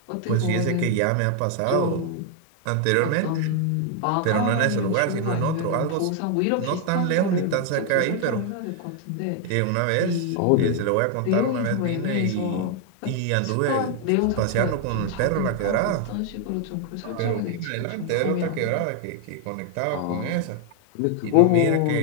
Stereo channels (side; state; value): both; different; correlation 0.00